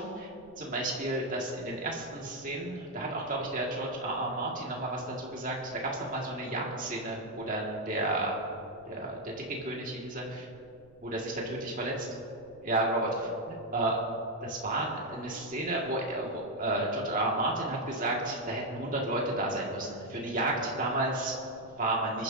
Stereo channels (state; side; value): noise; right; rumble, 27 dB below the sound